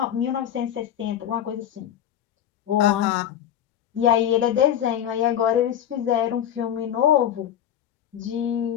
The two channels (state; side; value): quieter; right; 10.2 dB